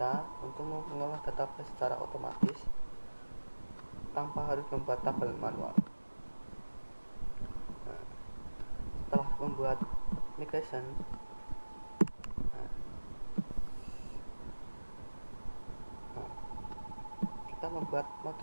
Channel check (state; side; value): inverted; both; correlation -1.00